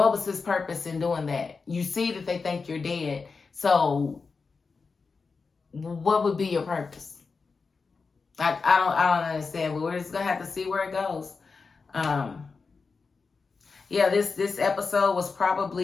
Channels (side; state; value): right; quieter; 4.7 dB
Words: was his purpose in doing that? You see that they think you're dead. So what would be your purpose? I don't understand, but we're just going to have to see where it goes. This episode was